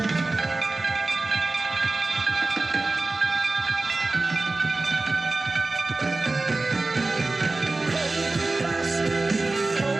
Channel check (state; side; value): quieter; left; 3.3 dB